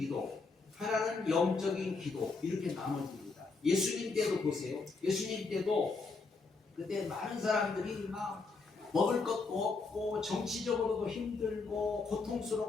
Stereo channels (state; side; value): quieter; right; 4.1 dB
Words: 하나는 영적인 기도, 이렇게 나눠집니다. 예수님 때도 보세요. 예수님 때도 그때 많은 사람들이 막 먹을 것도 없고 정치적으로도 힘들고